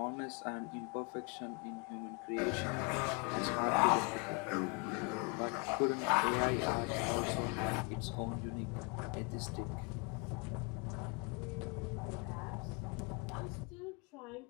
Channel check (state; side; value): quieter; right; 33.1 dB